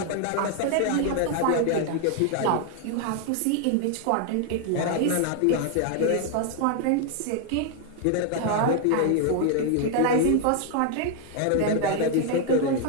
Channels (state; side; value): different; both; correlation 0.00